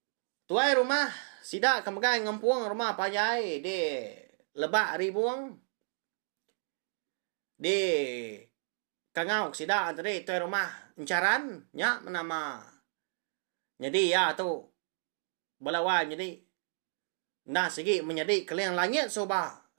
tuai rumah sidak kemagai ngempuang rumah payai di lebak ribuang. Di kangau sidak tadi tuai rumah encaran nya menama. Jadi ya tu balawan jadi nda segi menjadi kalian langit soba.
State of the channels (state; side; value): silent; left; digital silence